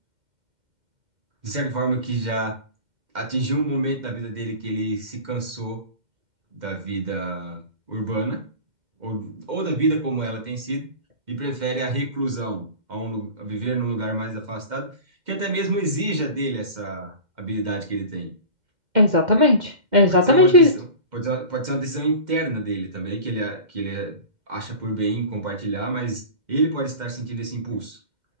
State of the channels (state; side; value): late; left; 2.1 ms